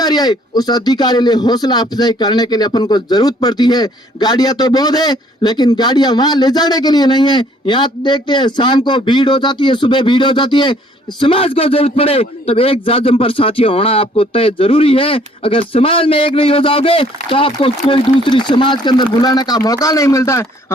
आए, उस अधिकारी लिए हौसला अफजाई करने के लिए अपन को जरूरत पड़ती है। गाड़ियां तो बहुत है, लेकिन गाड़ियां वहां ले जाने के लिए नहीं है। यहाँ देखते हैं शाम को भीड़ हो जाती है, सुबह भीड़ हो जाती है। समाज को जरूरत पड़े तब एक जाजम पर साथियों होना आपको तय जरूरी है। अगर समाज में एक नहीं हो जाओगे तो आपको कोई दूसरी समाज के अंदर बुलाने का मौका नहीं मिलता है।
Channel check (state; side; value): normal; both; correlation 0.61